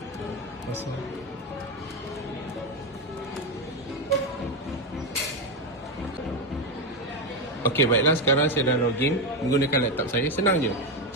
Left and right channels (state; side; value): normal; both; correlation 0.11